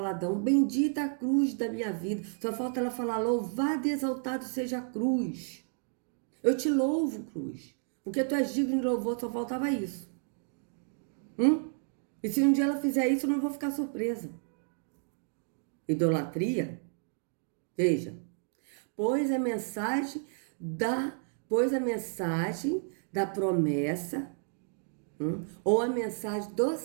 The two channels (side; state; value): left; silent; 57 dB below the other